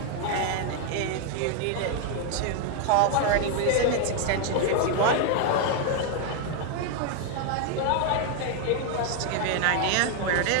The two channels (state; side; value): different; both; correlation 0.01